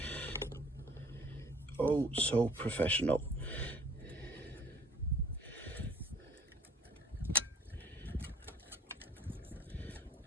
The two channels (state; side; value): normal; both; correlation 0.54